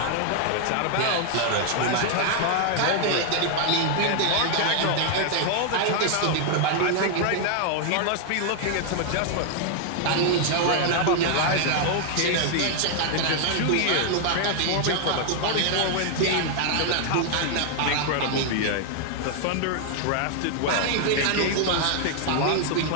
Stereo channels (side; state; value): both; different; correlation 0.00